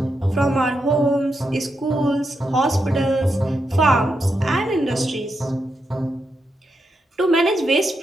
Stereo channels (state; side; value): normal; both; correlation 0.84